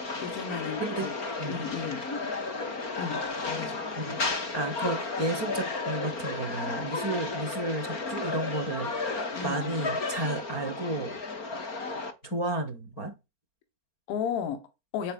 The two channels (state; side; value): late; right; 4.4 ms